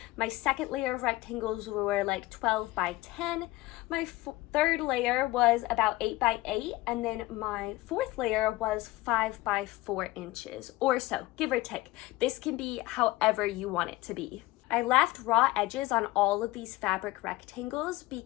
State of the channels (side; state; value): right; quieter; 19.1 dB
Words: My second layer of rectangles were like 12 by 10. My third layer was about 8 by 8, and then my fourth layer was 5 by 4 inches or so, give or take. This can be however you want it to be. I left raw edges on all of these fabric rectangles